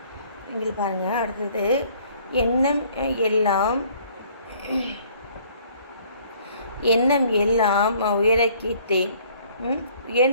இங்கே பாருங்கள். அடுத்தது எண்ணம் எல்லாம் எண்ணம் எல்லாம் உயர கேட்டேன்.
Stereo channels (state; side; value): inverted; both; correlation -0.59